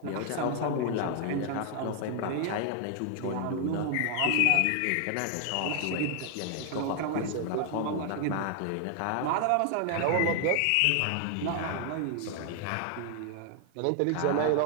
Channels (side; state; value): both; different; correlation 0.00